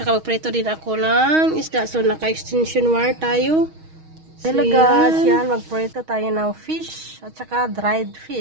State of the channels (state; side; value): late; left; 6.3 ms